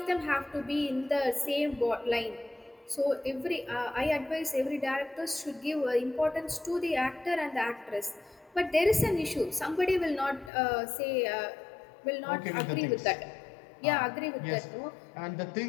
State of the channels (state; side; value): drops out; right; at 10.5 s